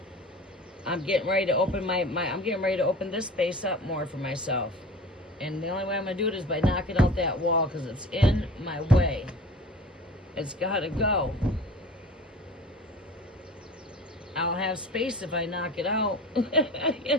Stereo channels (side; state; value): both; normal; correlation 0.39